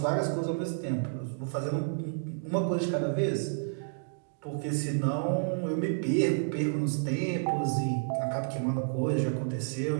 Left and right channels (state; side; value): silent; left; digital silence